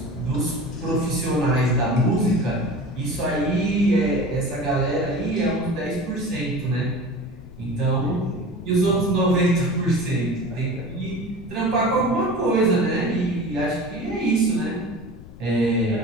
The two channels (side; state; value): left; noise; rumble, 17 dB below the sound